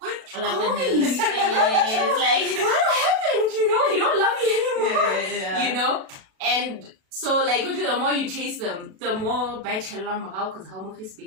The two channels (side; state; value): left; late; 37 ms